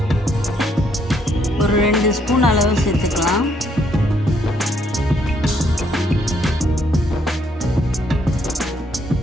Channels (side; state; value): both; normal; correlation 0.71